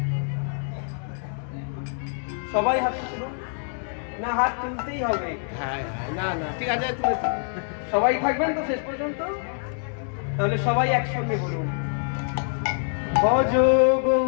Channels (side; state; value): right; silent; 61 dB below the other